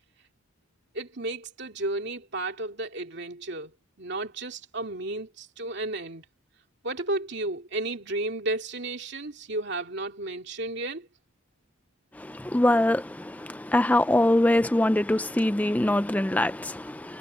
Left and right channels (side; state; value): both; normal; correlation 0.74